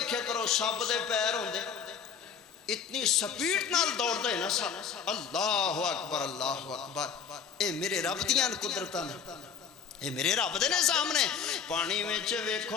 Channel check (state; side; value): quieter; right; 6.7 dB